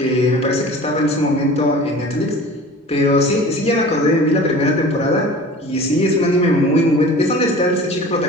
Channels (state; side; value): normal; both; correlation 0.41